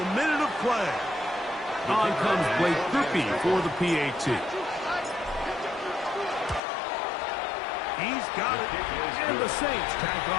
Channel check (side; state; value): right; drops out; at 6.6 s